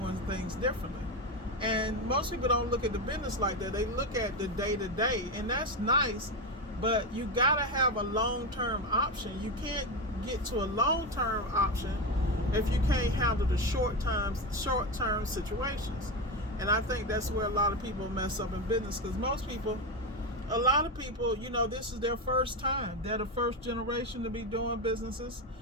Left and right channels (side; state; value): both; normal; correlation 0.14